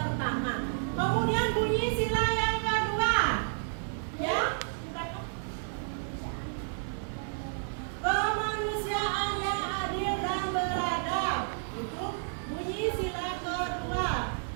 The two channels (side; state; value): left; silent; digital silence